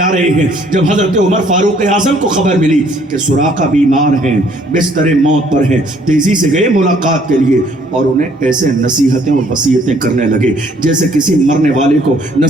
رہے ہیں۔ جب حضرت عمر فاروق اعظم کو خبر ملی کہ سراقہ بیمار ہیں، بستر موت پر ہیں، تیزی سے گئے ملاقات کے لیے، اور انہیں ایسے نصیحتیں اور وصیتیں کرنے لگے جیسے کسی مرنے والے کو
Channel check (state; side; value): normal; both; correlation 0.62